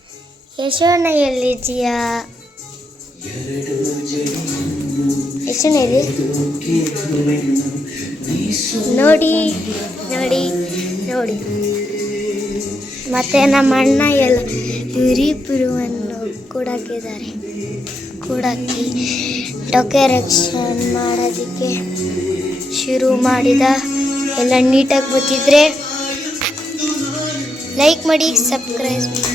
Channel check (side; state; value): both; normal; correlation 0.82